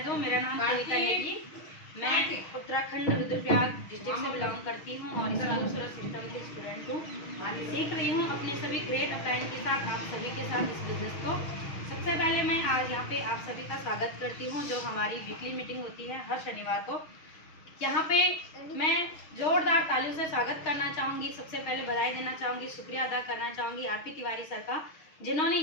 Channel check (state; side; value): late; right; 6.4 ms